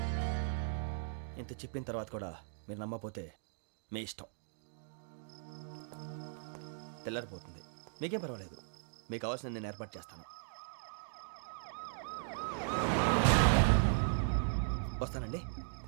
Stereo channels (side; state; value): left; silent; digital silence